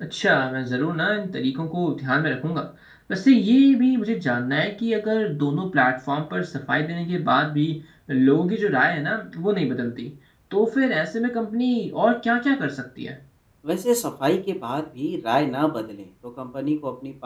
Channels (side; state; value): both; identical; correlation 1.00